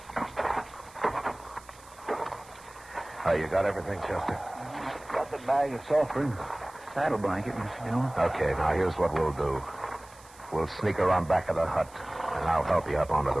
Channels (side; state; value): right; noise; hiss, 23 dB below the sound